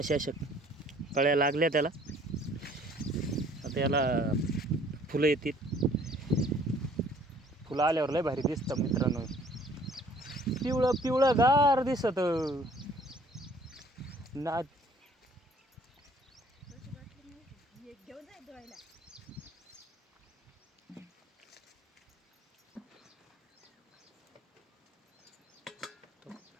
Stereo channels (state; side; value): normal; both; correlation 0.57